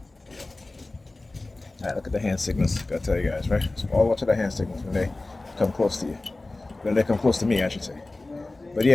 Alright, look at the hand signals. Gotta tell you guys, right? So all watch the hand signals when they come close to you. When they come close to me, I should say. But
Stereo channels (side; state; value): right; quieter; 3.0 dB